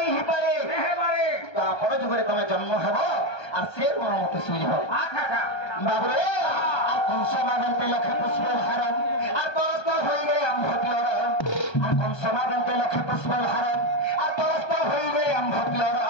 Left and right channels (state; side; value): late; right; 1.3 ms